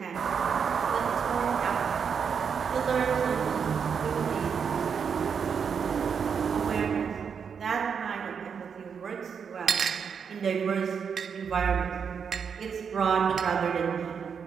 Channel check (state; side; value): quieter; left; 6.7 dB